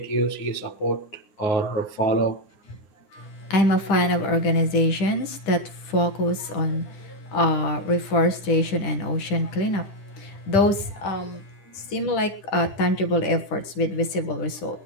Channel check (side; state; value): right; late; 10 ms